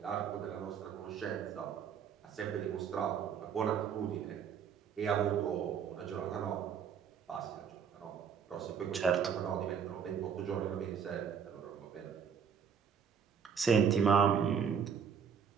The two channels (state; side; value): quieter; left; 7.3 dB